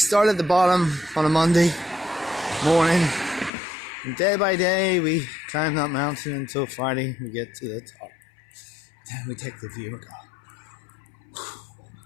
started at the bottom on a Monday morning. And day by day we climb that mountain until Friday we get to the top. Then we take the view and go.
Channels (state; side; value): drops out; right; at 3.5 s